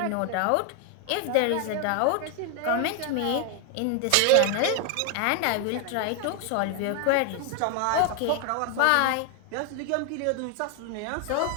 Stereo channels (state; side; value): different; both; correlation 0.01